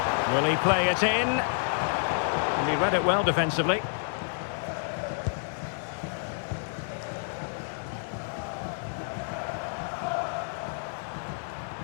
Will he play it in? And he read it well defensively.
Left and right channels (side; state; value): right; silent; digital silence